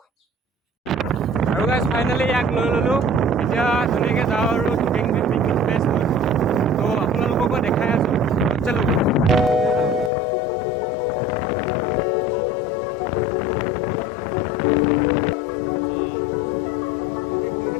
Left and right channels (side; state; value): right; drops out; at 10.1 s